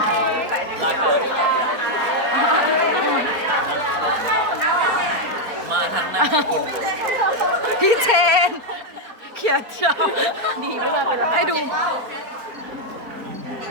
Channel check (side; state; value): left; late; 4.4 ms